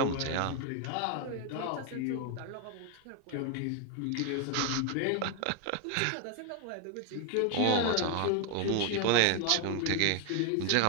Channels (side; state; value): both; different; correlation 0.01